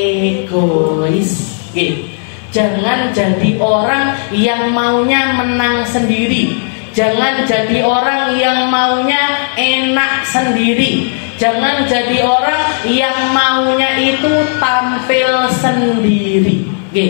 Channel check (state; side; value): silent; right; digital silence